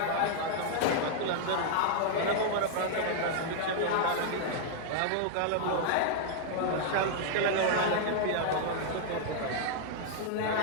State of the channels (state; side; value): different; both; correlation -0.01